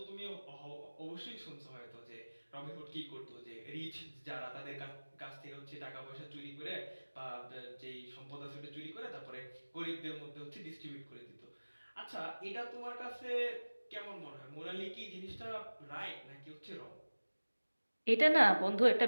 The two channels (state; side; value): inverted; both; correlation -1.00